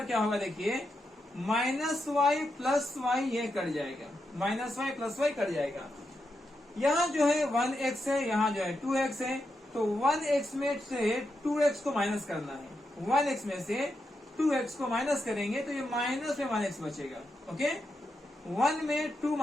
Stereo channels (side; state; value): both; normal; correlation 0.85